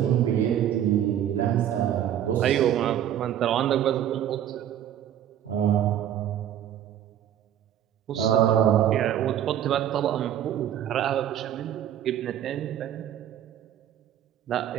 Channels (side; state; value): left; quieter; 10.7 dB